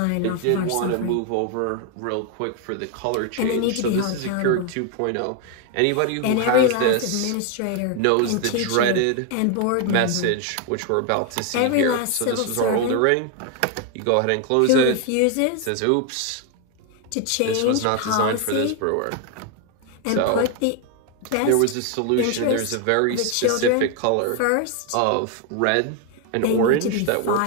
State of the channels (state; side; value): different; both; correlation 0.01